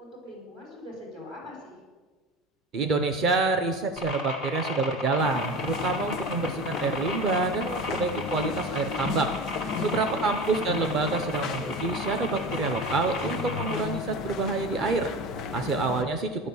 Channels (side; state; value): both; normal; correlation 0.31